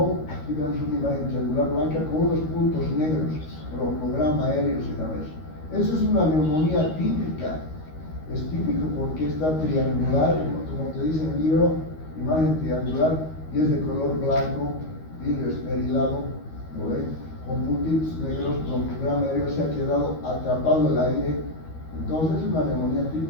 aquí vemos una imagen triangular blanca con unos puntos negros, broncograma aéreo se llama eso. Eso es una neumonía típica. Es típico porque está triangular, como te dice en el libro, imagen triangular, y es de color blanco, vidrio esmerilado, ¿no ven? Con puntitos negros, broncograma aéreo, se ha quedado atrapado el aire. Entonces es una neumonía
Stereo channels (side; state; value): right; late; 13 ms